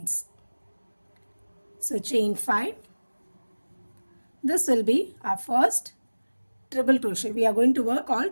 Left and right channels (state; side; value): inverted; both; correlation -1.00